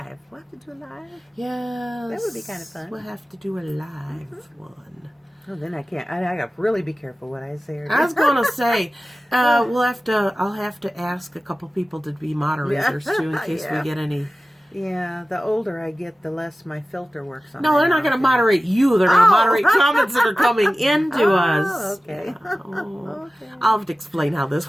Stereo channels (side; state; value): both; normal; correlation 0.95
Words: We'll have to do a live. Yes. That would be kind of fun. We'll have to do a live one. Oh, then I can't. I got to really be careful what I say. I was going to say, I'll have to ask a couple people to be moderators too, in case we get any. Yeah, the older I get, the less my filter works on. No, they're not going to moderate you. They're going to moderate comments that are coming into us. Okay. Okay. I'll have to explain how